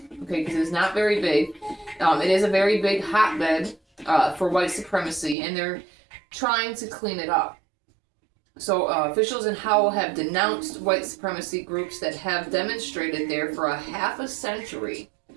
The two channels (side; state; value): left; drops out; at 5.4 s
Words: okay, because it's not very big. It is a very big hotbed for white supremacy, and they're trying to clean it up. So officials in Howell have denounced white supremacy groups that have demonstrated there for a half a century.